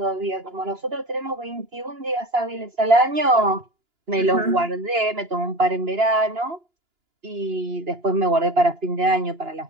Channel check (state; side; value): late; left; 2.9 ms